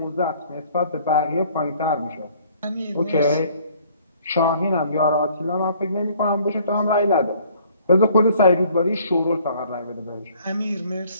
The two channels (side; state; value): both; inverted; correlation -0.58